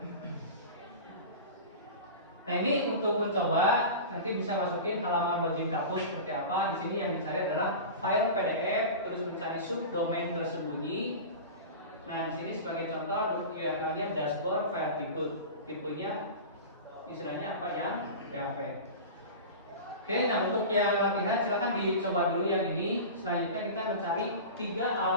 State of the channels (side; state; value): both; inverted; correlation -0.31